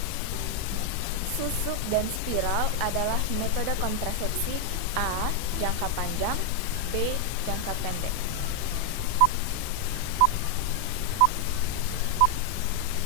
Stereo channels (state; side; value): different; both; correlation 0.00